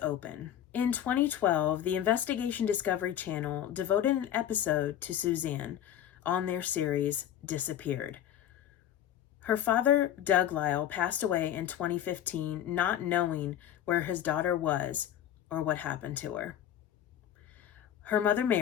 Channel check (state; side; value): quieter; right; 10.8 dB